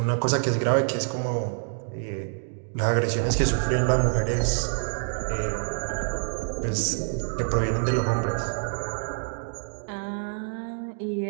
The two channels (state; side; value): silent; left; digital silence